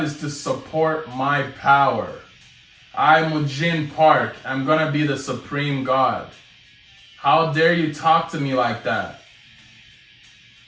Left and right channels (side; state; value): both; identical; correlation 1.00